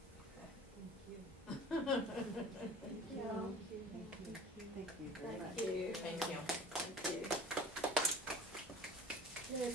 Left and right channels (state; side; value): normal; both; correlation 0.43